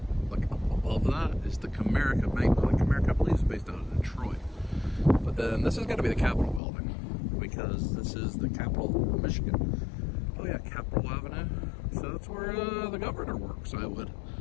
like up above that, is the Comerica Bank. Like Comerica, I believe, is based out of Detroit. But then this has got to be the Capitol building, because this is the capital of Michigan. Oh yeah, Capitol Avenue. So that's where the governor works, I would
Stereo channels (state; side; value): drops out; right; at 6.6 s